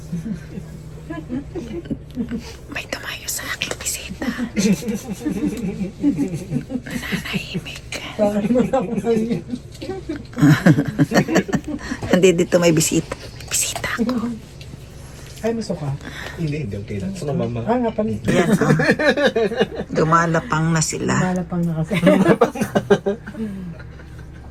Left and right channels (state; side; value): identical; both; correlation 1.00